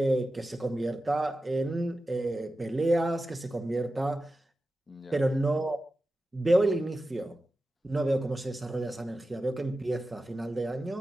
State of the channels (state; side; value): normal; both; correlation 0.93